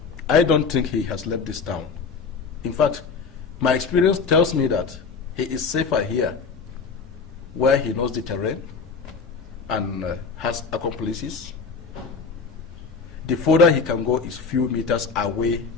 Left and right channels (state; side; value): quieter; right; 5.1 dB